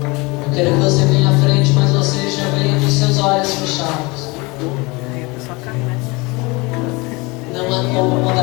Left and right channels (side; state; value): right; quieter; 25.4 dB